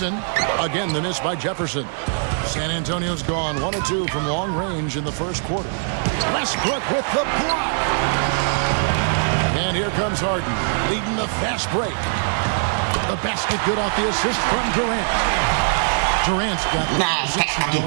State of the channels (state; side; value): silent; left; digital silence